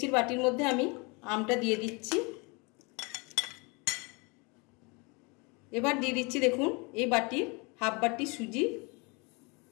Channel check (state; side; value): quieter; right; 29.7 dB